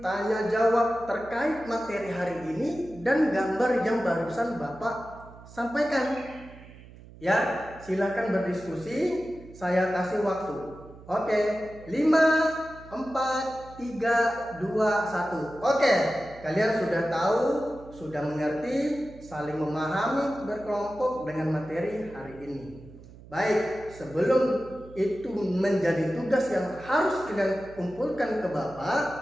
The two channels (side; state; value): right; noise; hum, 19 dB below the sound